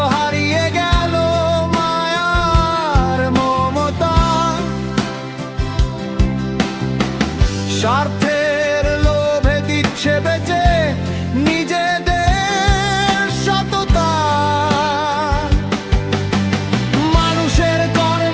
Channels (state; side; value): identical; both; correlation 1.00